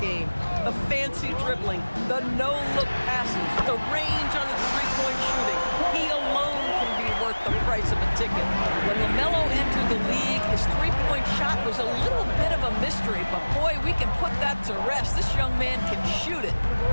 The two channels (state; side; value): inverted; both; correlation -1.00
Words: The fancy dribbling, the no-look passes, the range on his three-point shooting. He alone can be worth the price of a ticket. When LaMelo entered the league, his three-point shot was a little bit of a mystery, but boy, we can put that to rest. This young man can shoot it.